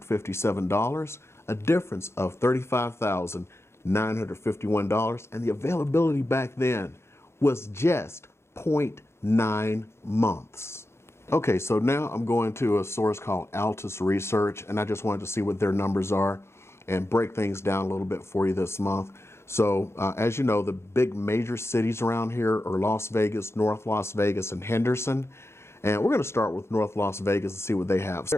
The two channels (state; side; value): late; right; 0.13 ms